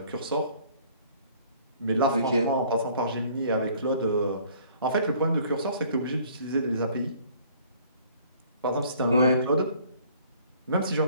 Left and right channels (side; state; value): both; inverted; correlation -0.56